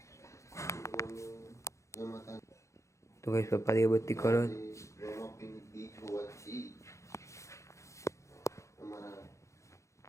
તો ગઈશ પપ્પા દીવબત્તી કરો.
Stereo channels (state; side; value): late; right; 0.15 ms